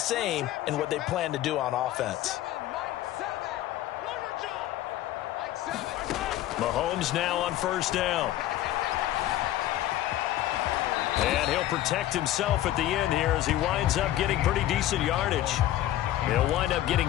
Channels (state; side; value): quieter; right; 13.8 dB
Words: in what they plan to do on offense. Mahomes now on 1st down. And he'll protect himself at the end here as he winds up getting pretty decent yardage. He'll wind up